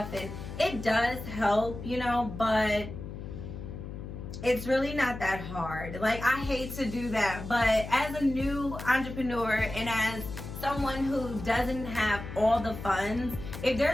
and it does help, you know, but it's really not that hard. Like, I hate to do that, but as a new entrepreneur and as someone who doesn't have all the funds, if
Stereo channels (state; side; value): noise; left; hum, 9 dB below the sound